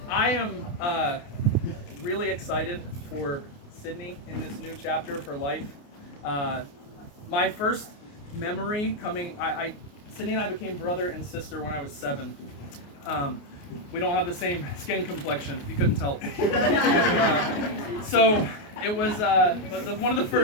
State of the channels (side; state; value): right; late; 28 ms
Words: I am really excited for Sydney in this new chapter of her life. My first memory coming, Sydney and I became brother and sister when I was 7. We don't have the same skin complexion, if you couldn't tell. So it was one of the